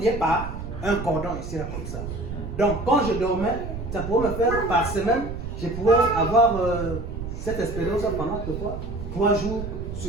liés par un cordon ici là comme ça. Donc quand je dormais, ça pouvait me faire par semaine, je pouvais avoir cette expérience pendant 3 jours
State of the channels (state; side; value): noise; right; rumble, 7 dB below the sound